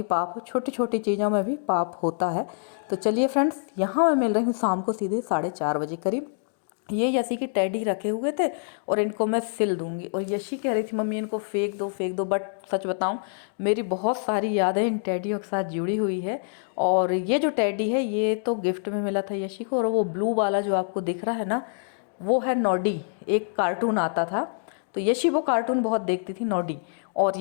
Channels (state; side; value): silent; right; digital silence